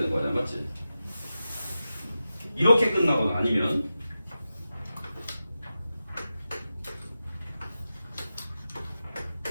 거야, 맞지? 이렇게 끝나거나 아니면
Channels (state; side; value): inverted; both; correlation -0.92